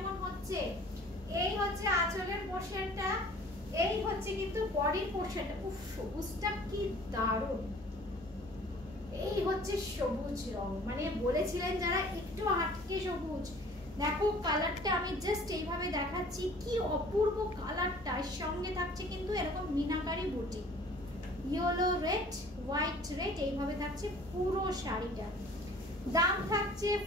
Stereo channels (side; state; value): both; normal; correlation 0.50